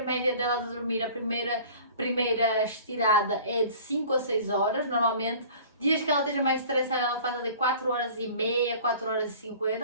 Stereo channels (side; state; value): both; inverted; correlation -0.45